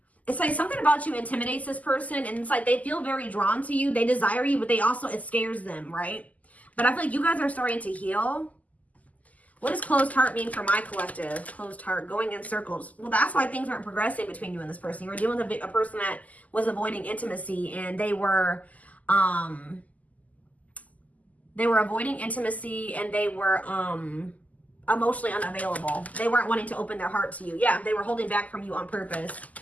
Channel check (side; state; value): right; late; 0.076 ms